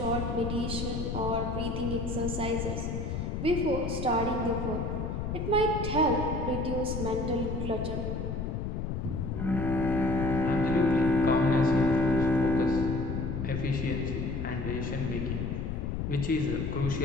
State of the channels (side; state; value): left; noise; rumble, 3 dB below the sound